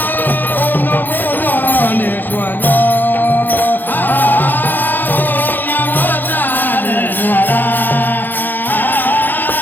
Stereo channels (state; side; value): late; right; 0.088 ms